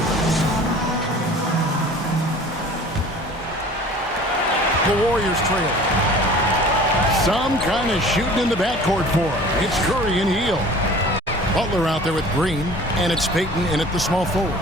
The Warriors trail. Some kind of shooting in the backcourt for him. It's Curry and Hield. Butler out there with Green, and it's Payton in at the small forward.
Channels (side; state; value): both; normal; correlation 0.45